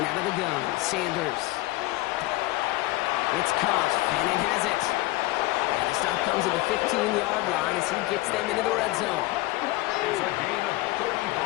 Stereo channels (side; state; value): right; quieter; 19.0 dB